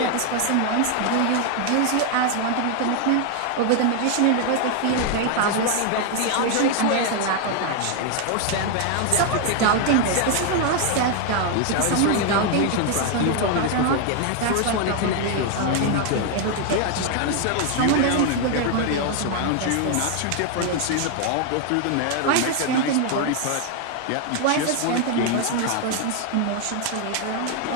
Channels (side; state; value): both; different; correlation 0.00